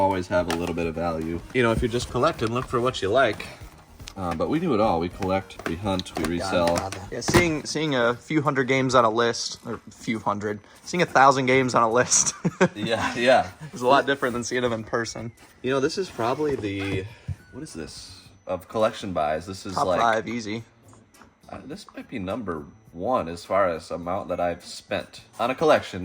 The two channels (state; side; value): identical; both; correlation 1.00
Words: have a little bit of value. You know, if you're just collecting, look for what you like. But we do it all. We collect, we hunt, we resell. Yeah, seeing a few hundred games on a list, or few hundred, seeing 1,000 games on a list. Yeah. It's a lot different than seeing them in person. You know, this is probably the, what is this? Of collection buys. This is Top like 5, easy. This might be number 1 as far as amount that I've spent on a collection,